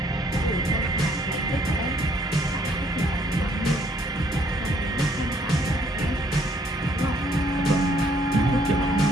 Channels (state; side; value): normal; both; correlation 0.66